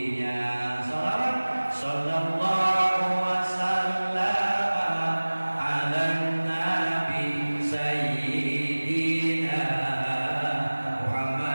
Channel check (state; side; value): inverted; both; correlation -1.00